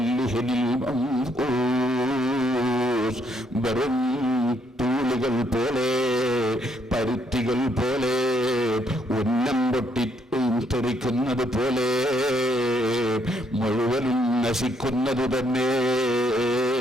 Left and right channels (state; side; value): normal; both; correlation 0.71